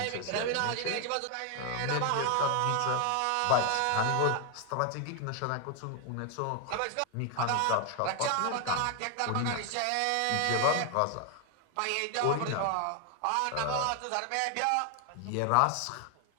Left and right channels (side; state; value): both; different; correlation 0.01